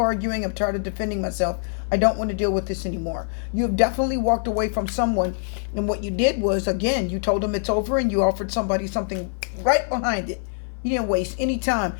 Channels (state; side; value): silent; right; 59 dB below the other